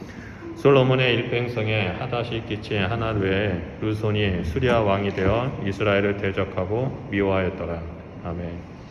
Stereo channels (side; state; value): both; identical; correlation 1.00